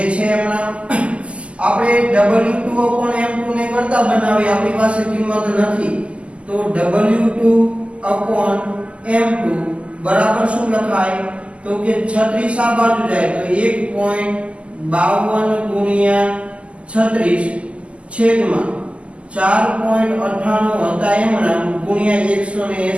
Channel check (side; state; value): left; late; 0.061 ms